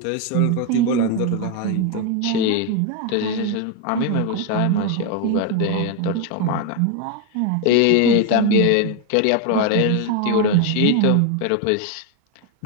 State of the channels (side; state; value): both; different; correlation 0.02